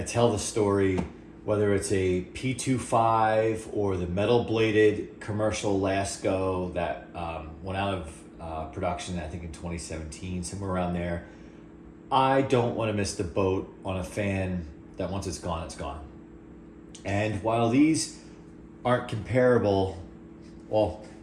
tell the story, whether it's a P25 or the metal bladed commercial Lasko that went out of production, I think in 2017, somewhere around there. I don't want to miss the boat on a fan that once it's gone, it's gone. And while these aren't comparable, well,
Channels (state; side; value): identical; both; correlation 1.00